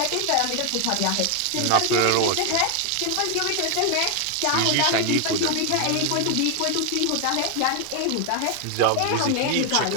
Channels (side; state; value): both; different; correlation 0.01